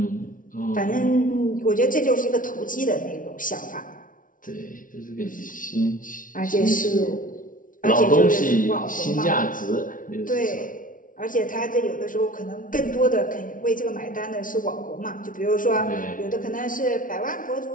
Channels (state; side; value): late; right; 0.38 ms